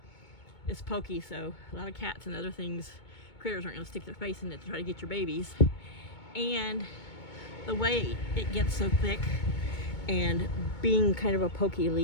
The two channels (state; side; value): late; right; 2.2 ms